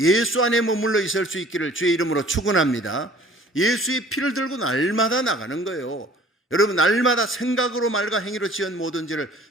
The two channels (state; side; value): normal; both; correlation 0.50